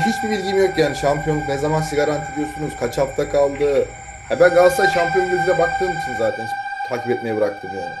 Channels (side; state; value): both; identical; correlation 1.00